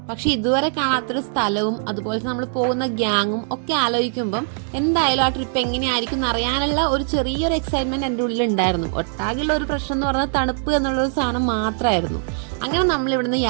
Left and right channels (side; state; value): left; silent; digital silence